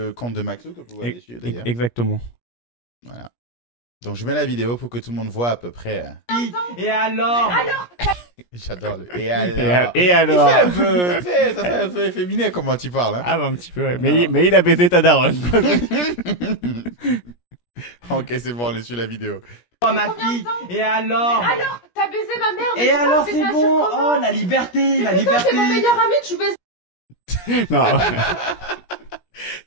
compte de Maxou, que vous voyez dessus d'ailleurs. Exactement. Voilà. Donc, je mets la vidéo pour que tout le monde voit à peu près. Et alors J'adore le. Et alors. Et alors Il fait un peu. Tu sais, ça fait un peu efféminé comment tu parles. Hein. Ah bah un petit peu, ouais. Alors. Mais il a baisé ta daronne. Ok, c'est bon, on est sur la vidéo. Oh ma fille Et alors Alors, t'as baisé ma mère, mais Et tu penses alors que c'est un bon surcommande. Oh la liberté La Mais putain, liberté c'est mon meilleur ami, tu baises. Non.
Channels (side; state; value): right; late; 17 ms